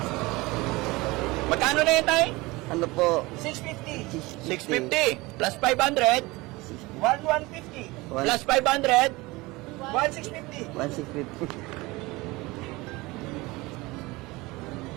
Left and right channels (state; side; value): quieter; left; 22.1 dB